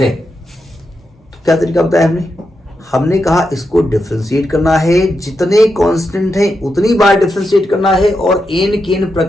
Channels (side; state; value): both; normal; correlation 0.86